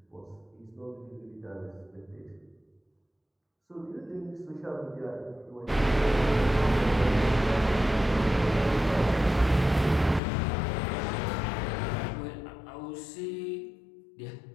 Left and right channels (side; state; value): right; drops out; at 10.2 s